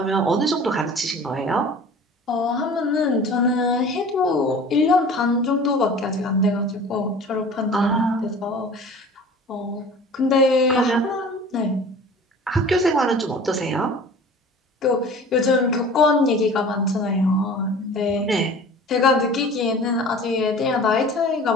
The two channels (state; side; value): normal; both; correlation 0.42